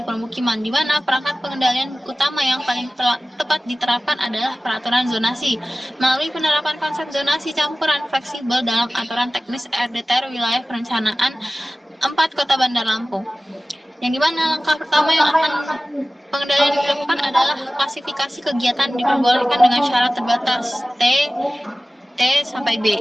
permukiman, di mana perangkat pengendalian utama yang paling tepat diterapkan adalah peraturan zonasi. Melalui penerapan konsep zonasi campuran fleksibel dalam aturan teknis RDTR wilayah perencanaan 4 Kota Bandar Lampung. Yang dimana langkah pertama yang akan pengendalian dilakukan adalah klasifikasi kegiatan diperbolehkan dengan syarat terbatas T sampai B.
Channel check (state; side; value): normal; both; correlation 0.97